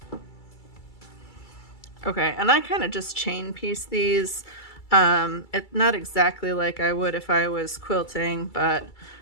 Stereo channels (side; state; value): right; late; 2.3 ms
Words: Okay, and I kind of just chain piece these. It's not exactly like I would if I was quilting, but